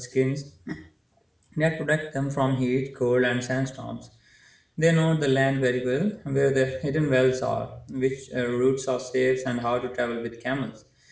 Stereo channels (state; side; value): identical; both; correlation 1.00